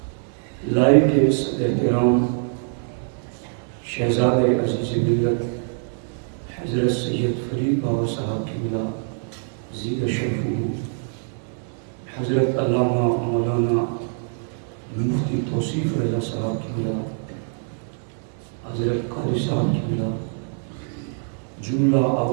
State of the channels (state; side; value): silent; left; 63 dB below the other